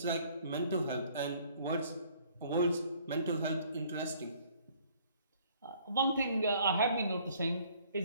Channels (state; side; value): inverted; both; correlation -0.59